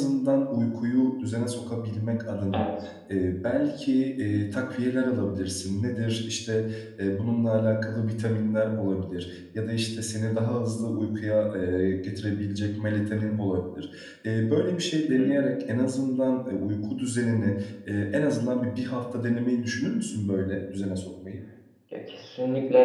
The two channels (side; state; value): both; identical; correlation 1.00